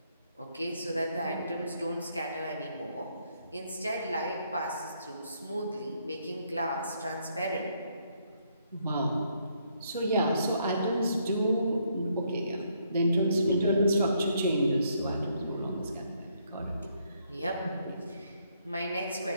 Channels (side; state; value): both; inverted; correlation -0.72